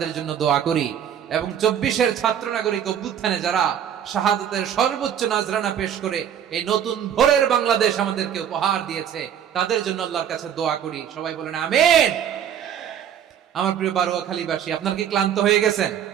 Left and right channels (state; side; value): quieter; left; 9.2 dB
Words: জন্য দোয়া করি এবং 24-এর ছাত্র নাগরিক অভ্যুত্থানে যারা শাহাদাতের সর্বোচ্চ নাজরানা পেশ করে এই নতুন ভোরের বাংলাদেশ আমাদেরকে উপহার দিয়েছে, তাদের জন্য আল্লাহর কাছে দোয়া করি। সবাই বলেন আমিন। আমার প্রিয় বারোয়াখালীবাসী, আপনার কি ক্লান্ত হয়ে গেছেন?